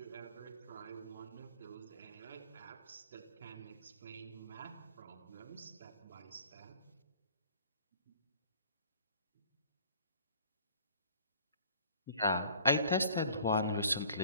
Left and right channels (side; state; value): both; inverted; correlation -0.52